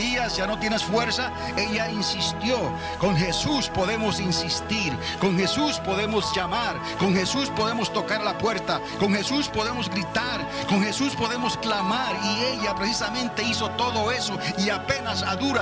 ya no tienes fuerza, ella insistió. Con Jesús podemos insistir, con Jesús podemos llamar, con Jesús podemos tocar la puerta, con Jesús podemos gritar, con Jesús podemos clamar. Y ella precisamente hizo todo eso, y apenas a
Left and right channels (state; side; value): identical; both; correlation 1.00